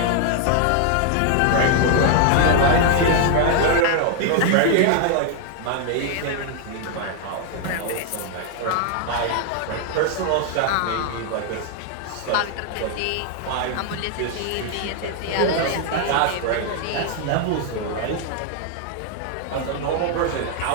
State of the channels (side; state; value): both; different; correlation 0.00